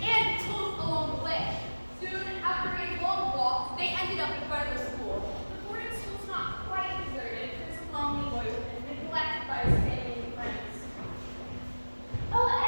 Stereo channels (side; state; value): both; inverted; correlation -1.00